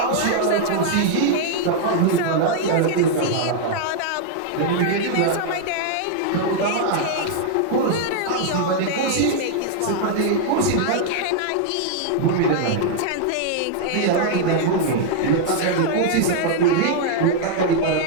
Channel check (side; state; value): both; different; correlation -0.01